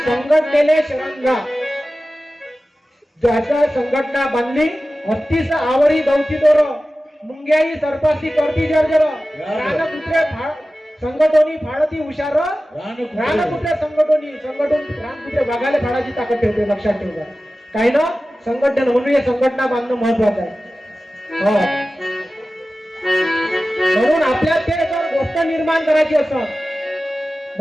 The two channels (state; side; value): normal; both; correlation 0.95